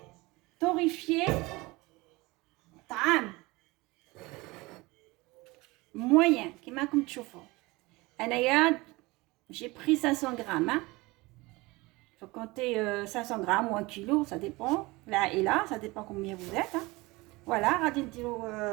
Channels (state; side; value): quieter; left; 22.7 dB